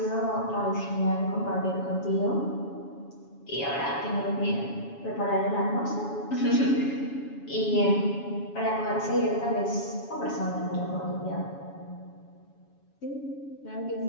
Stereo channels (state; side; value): late; right; 7.2 ms